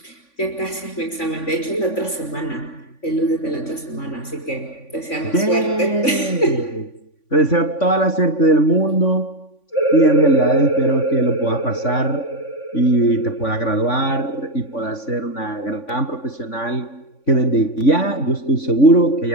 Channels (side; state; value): right; late; 3.5 ms